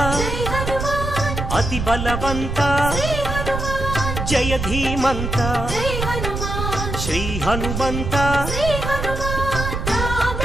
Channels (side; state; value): right; noise; rumble, 4 dB below the sound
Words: అతి బలవంత జయ ధీమంత శ్రీ హనుమంత